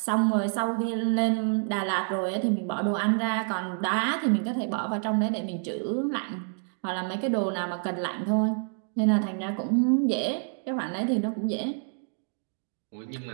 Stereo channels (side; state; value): left; silent; 57 dB below the other